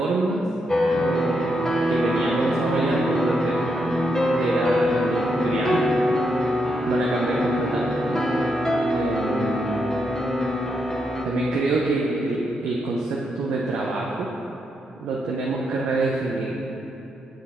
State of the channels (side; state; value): both; normal; correlation 0.81